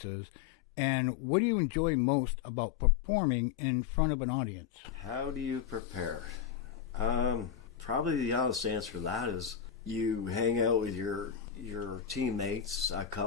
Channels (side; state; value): right; quieter; 8.8 dB